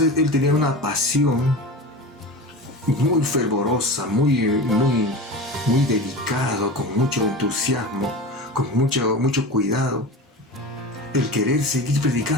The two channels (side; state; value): both; normal; correlation 0.30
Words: él tenía una pasión muy fervorosa, muy dedicado, con mucho entusiasmo, con mucho cuidado, el querer seguir